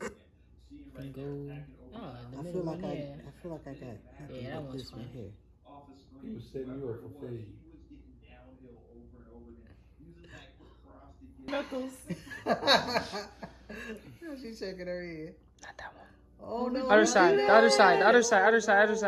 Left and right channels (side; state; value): both; identical; correlation 1.00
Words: And go. Oh, in the I middle feel like one, I yeah. feel like I got. Yeah, that one's this one fine. here. He was setting you up for fade. Knuckles. She's shaking her head. Not that one. Oh no. Other side. The other side. The other side. Other side. Other